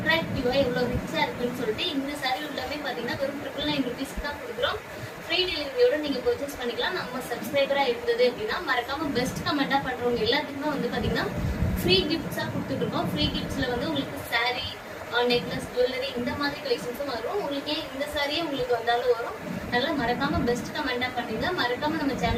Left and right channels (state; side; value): identical; both; correlation 1.00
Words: எவ்வளவு ரிச்சா இருக்குன்னு சொல்லிட்டு. இந்த சாரி உள்ளமே பாத்தீங்கன்னா வெறும் 999 ருபீஸ்க்கு தான் கொடுக்குறோம். ஃப்ரீ டெலிவரியோட நீங்க பர்ச்சேஸ் பண்ணிக்கலாம். நம்ம சப்ஸ்கிரைபரா இருந்தது அப்படின்னா மறக்காம பெஸ்ட் கமெண்டா பண்றவங்க எல்லாத்துக்குமே வந்து பாத்தீங்கன்னா ஃப்ரீ கிஃப்ட்ஸா கொடுத்துட்டு இருக்கோம். ஃப்ரீ கிஃப்ட்ஸ்ல வந்து உங்களுக்கு சாரி, நெக்லஸ், ஜுவல்லரி இந்த மாதிரி கலெக்ஷன்ஸும் வரும். உங்களுக்கு இந்த சாரியே உங்களுக்கு வந்தாலும் வரும். நல்லா மறக்காம பெஸ்ட் கமெண்டா பண்ணுங்க. மறக்காம நம்ம